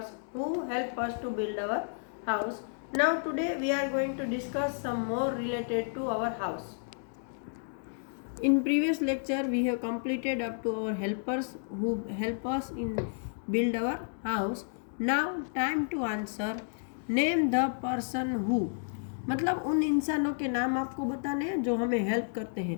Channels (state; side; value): silent; right; digital silence